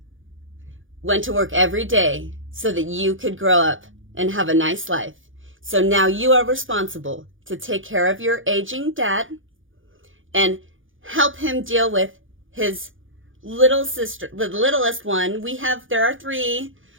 went to work every day so that you could grow up and have a nice life. So now you are responsible to take care of your aging dad and help him deal with his little sister, the littlest one. There are 3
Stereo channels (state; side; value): late; left; 0.58 ms